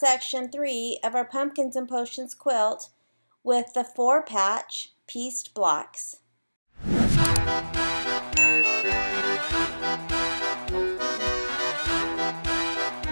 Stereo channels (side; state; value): both; inverted; correlation -1.00